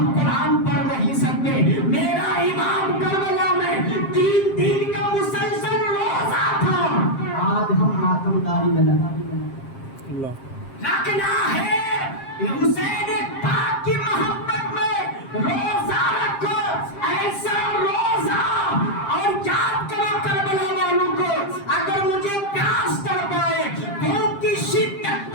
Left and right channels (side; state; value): right; late; 7.5 ms